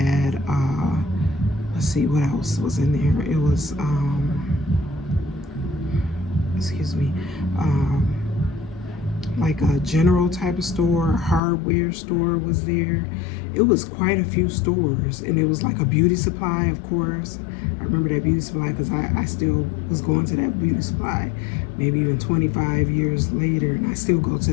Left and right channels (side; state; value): right; drops out; at 11.4 s